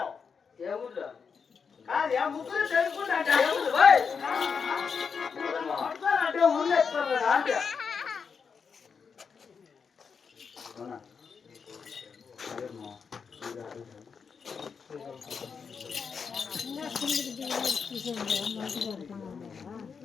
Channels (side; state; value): right; quieter; 5.9 dB